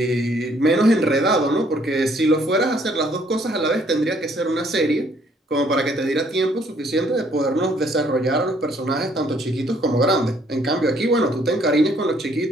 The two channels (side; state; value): both; normal; correlation 0.65